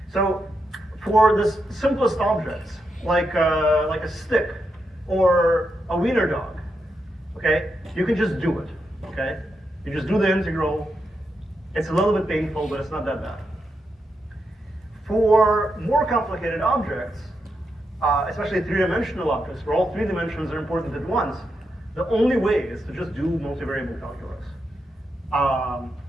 So for the simplest objects, like a stick or a wiener dog, okay, you can just do it, okay? You just do the integral. It's a little bit painful, but it's not that bad. For more complicated objects, especially three-dimensional objects, where all three dimensions are important at once, the only way is to just do multivariable calculus.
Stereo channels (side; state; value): both; normal; correlation 0.84